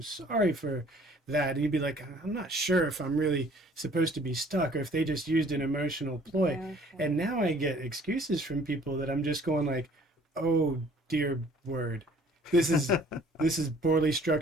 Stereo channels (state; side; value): normal; both; correlation 0.55